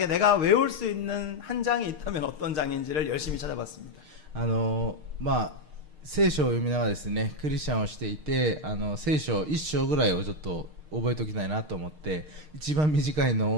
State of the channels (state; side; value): late; left; 6.5 ms